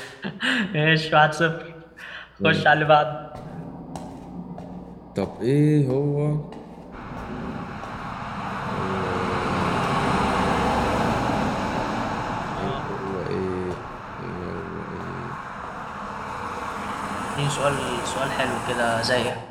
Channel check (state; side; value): identical; both; correlation 1.00